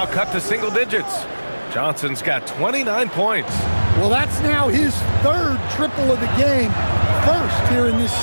cut to single digits. Johnson's got 29 points. Well, that's now his 3rd triple of the game, 1st here in this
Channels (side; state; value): both; inverted; correlation -1.00